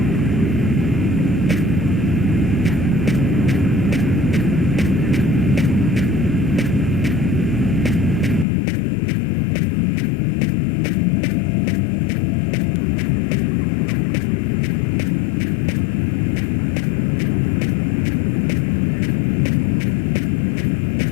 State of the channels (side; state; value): right; drops out; at 8.5 s